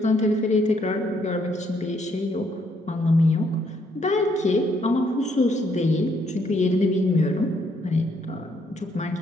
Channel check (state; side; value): normal; both; correlation 0.71